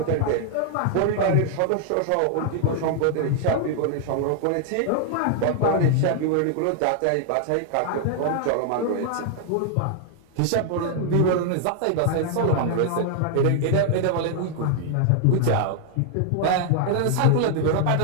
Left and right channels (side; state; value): both; different; correlation 0.00